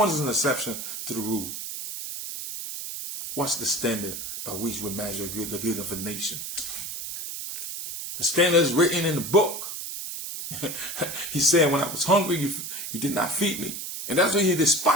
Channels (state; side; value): noise; right; hiss, 7 dB below the sound